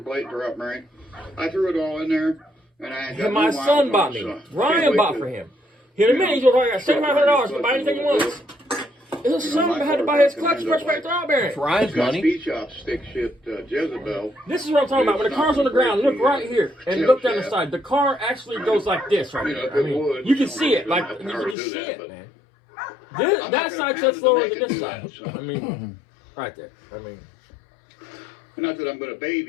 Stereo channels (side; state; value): right; drops out; at 21.6 s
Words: plate, drop bearing. I threw it all in there, and I got And my new son miles bought on it, me. so can't Ryan wait bought to- for him. In a minute, he's going to got $7,500 to buy anything he wants. His son had to buy his clutch, pressure plate, throw bearing. Ryan's It's got money. speed shop stick shift Jezebel. This is what I'm talking about. When the car's on the ground, look right here and look down the side. The car actually goes like this right here. I mean, you can see it. Like, you can just see it, man. That side's so slower than this side. I mean, right there. I mean, Not that I'm going to